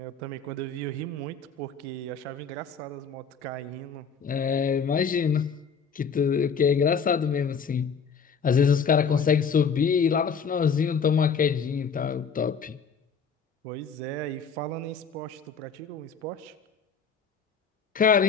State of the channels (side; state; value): right; quieter; 5.7 dB